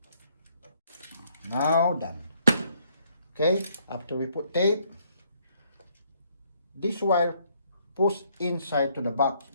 Now done. Okay, after we put tape, this wire push inside to the box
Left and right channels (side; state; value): both; inverted; correlation -0.68